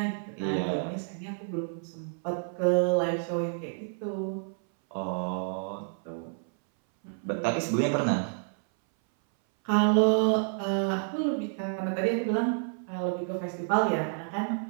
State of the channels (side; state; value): left; silent; 58 dB below the other